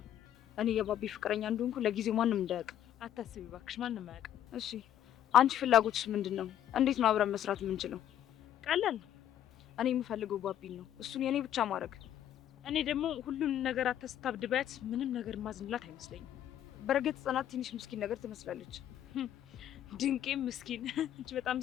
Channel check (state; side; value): quieter; right; 11.0 dB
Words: እኔ የባቢ ፍቅረኛ እንደሆንኩ ለጊዜው ማንም እንዳያውቅ። አታስቢ እባክሽ፣ ማንም አያውቅም። እሺ፣ አንቺ ፍላጎትሽ ምንድን ነው? እንዴት ነው አብረን መስራት የምንችለው? ቀላል ነው። እኔ የምፈልገው ባቢን ነው፣ እሱን የኔ ብቻ ማድረግ። እኔ ደግሞ ሁሉን ነገር አታስታብድባት። ምንም ነገር ማዝንላት አይመስለኝም። በእርግጥ ጽናት ትንሽ ምስኪን ነገር ትመስላለች። ድንቄ ምስኪን እንጂ በጣም